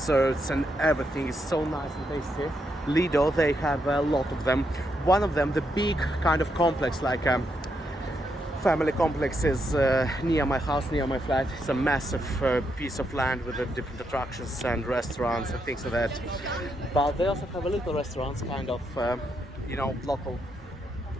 and everything is so nice and tasty. Lido, they have a lot of them. One of them, the big kind of complex, like family complex, is near my house, near my flat. It's a massive piece of land with different attractions and restaurants and things like that. But they also have a little restaurants, kind of, you know, local,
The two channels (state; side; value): normal; both; correlation 0.80